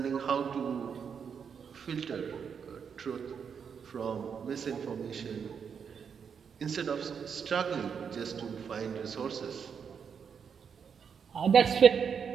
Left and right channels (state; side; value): quieter; left; 6.8 dB